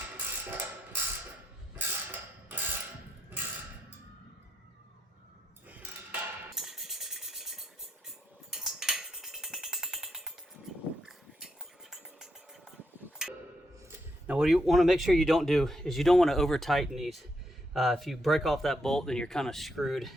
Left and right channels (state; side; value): normal; both; correlation 0.79